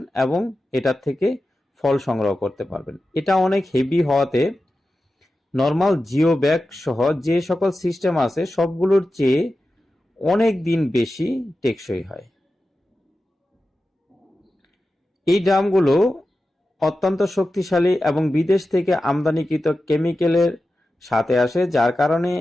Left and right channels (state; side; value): normal; both; correlation 0.93